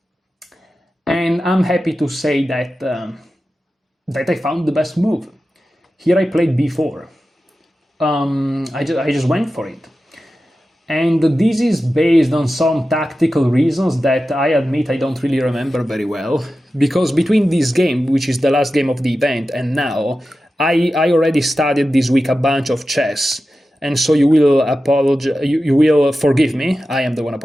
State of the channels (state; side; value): normal; both; correlation 0.93